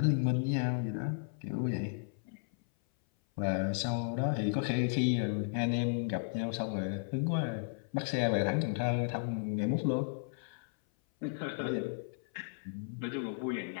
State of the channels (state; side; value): silent; right; 55 dB below the other